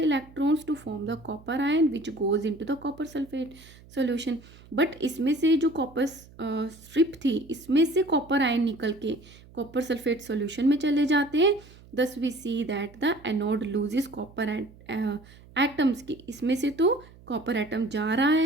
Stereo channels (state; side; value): noise; right; hum, 23 dB below the sound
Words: electrons to form the copper ion which goes into the copper sulfate solution। but इसमें से जो कॉपर स्ट्रिप थी इसमें से कॉपर आयन निकल के कॉपर सल्फेट सॉल्यूशन में चले जाते हैं। thus we see that the anode loses copper atoms की, इसमें से तो कॉपर एटम जा रहा